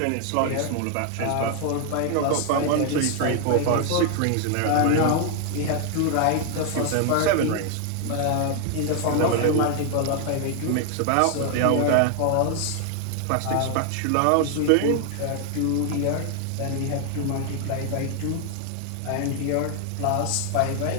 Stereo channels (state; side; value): different; both; correlation 0.00